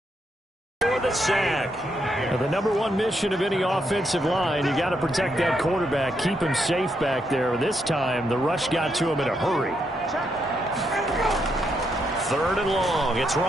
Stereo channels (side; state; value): both; normal; correlation 0.79